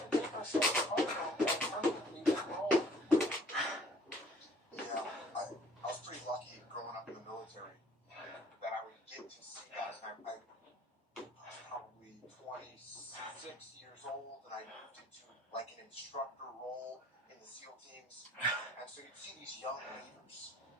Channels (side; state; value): both; normal; correlation 0.55